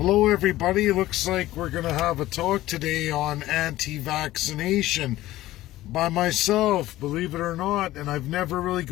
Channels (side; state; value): right; quieter; 15.9 dB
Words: everybody, looks like we're going to have a talk today on anti-vaccination by myself, believe it or not, and I've never really